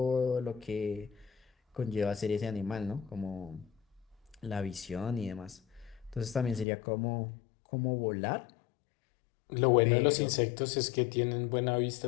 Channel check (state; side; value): drops out; right; at 6.7 s